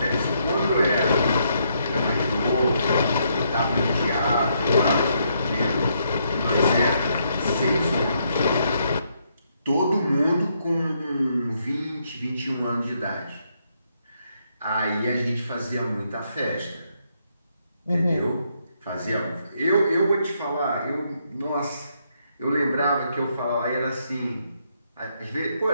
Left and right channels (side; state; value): both; inverted; correlation -0.75